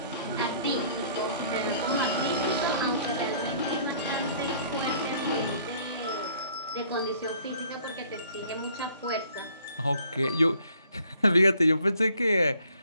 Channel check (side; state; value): both; inverted; correlation -0.59